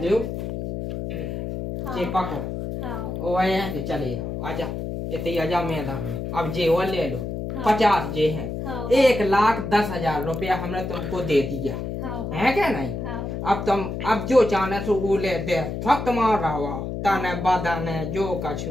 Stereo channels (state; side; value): noise; left; hum, 5 dB below the sound